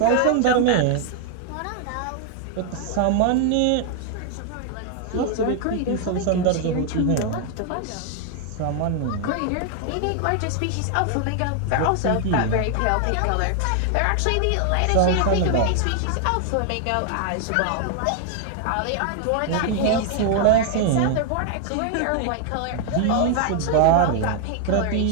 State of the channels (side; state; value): both; different; correlation 0.00